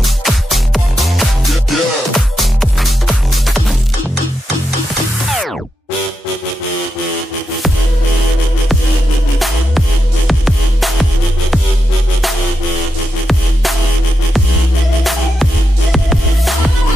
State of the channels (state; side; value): normal; both; correlation 0.86